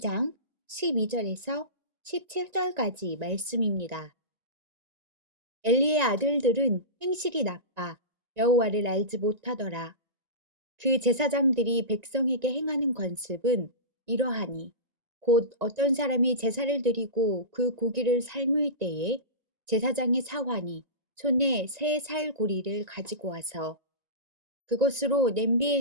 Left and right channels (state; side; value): late; left; 1.9 ms